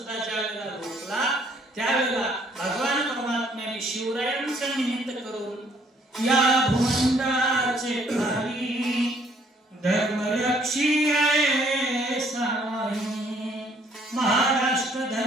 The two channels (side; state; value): both; normal; correlation 0.64